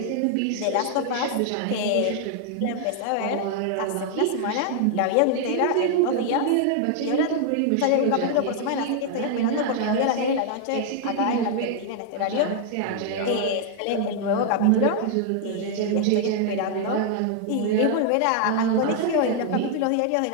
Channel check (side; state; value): both; different; correlation 0.00